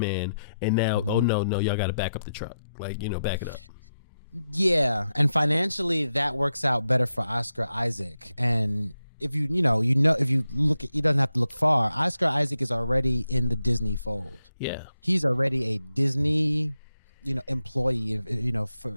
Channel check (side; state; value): both; inverted; correlation -0.87